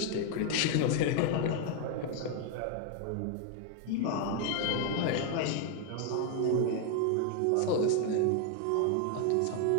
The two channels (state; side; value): different; both; correlation 0.00